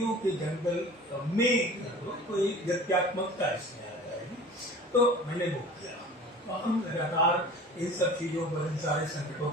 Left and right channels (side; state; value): both; normal; correlation 0.42